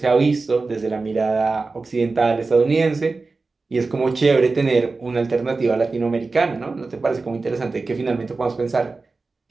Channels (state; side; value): quieter; left; 3.8 dB